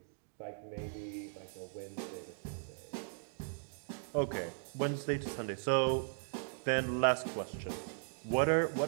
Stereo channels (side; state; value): left; silent; digital silence